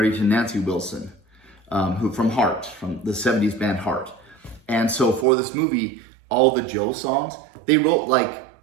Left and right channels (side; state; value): left; drops out; at 5.2 s